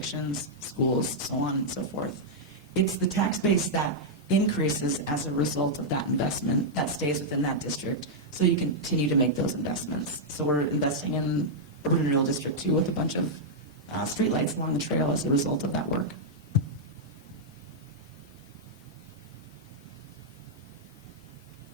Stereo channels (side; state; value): both; normal; correlation -0.06